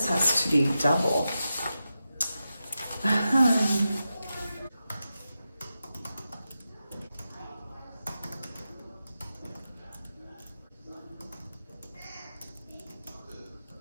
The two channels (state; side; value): inverted; both; correlation -0.90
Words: has to be double.